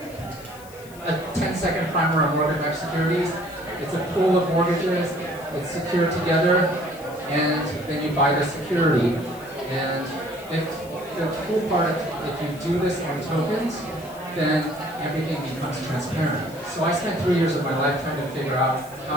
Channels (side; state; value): left; noise; hiss, 21 dB below the sound